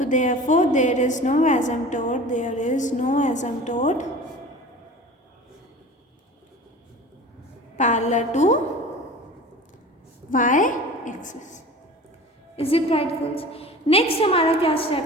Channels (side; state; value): both; normal; correlation 0.38